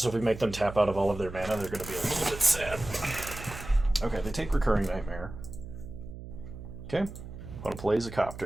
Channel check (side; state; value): right; noise; hum, 12 dB below the sound